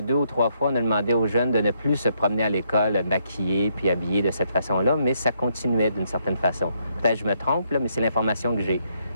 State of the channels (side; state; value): both; inverted; correlation -0.74